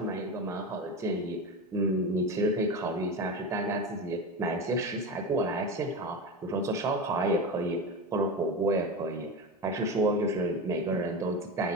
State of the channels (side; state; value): both; normal; correlation 0.23